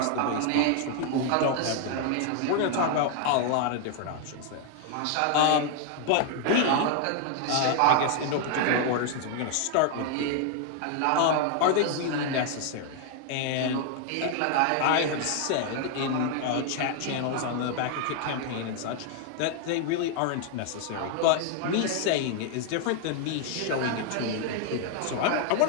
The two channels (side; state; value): both; different; correlation 0.00